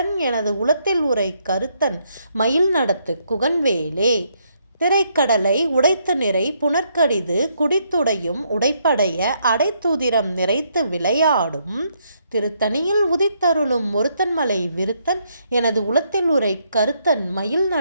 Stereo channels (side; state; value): both; inverted; correlation -0.74